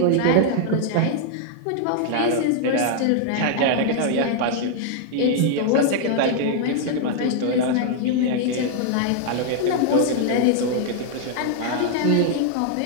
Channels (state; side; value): different; both; correlation 0.00